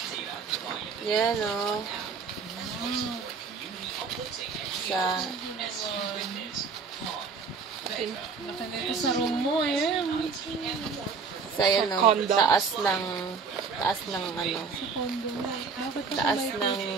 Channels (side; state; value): left; quieter; 5.3 dB